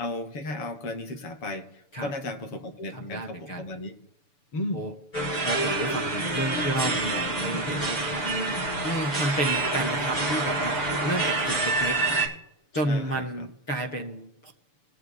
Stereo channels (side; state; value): right; late; 6.9 ms